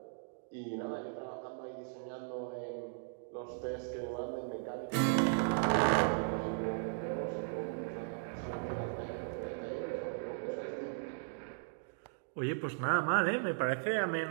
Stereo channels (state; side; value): silent; left; digital silence